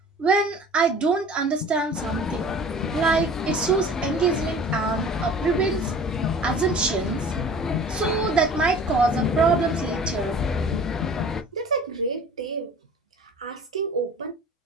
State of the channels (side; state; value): both; normal; correlation 0.45